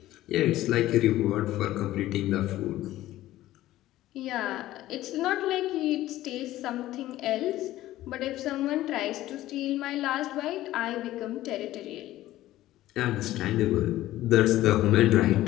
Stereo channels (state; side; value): quieter; right; 15.1 dB